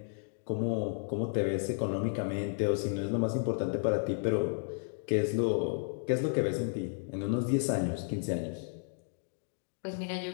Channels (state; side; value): silent; right; digital silence